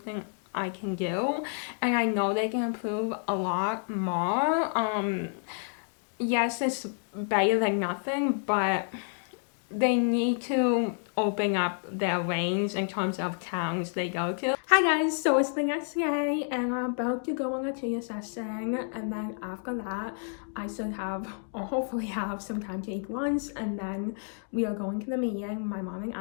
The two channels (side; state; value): right; silent; 58 dB below the other